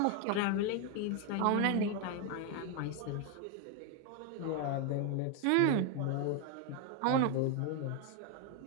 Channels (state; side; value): different; both; correlation 0.01